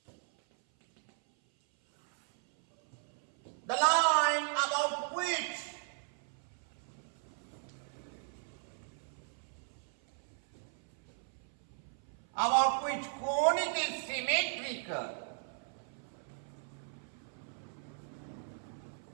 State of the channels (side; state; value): left; silent; 53 dB below the other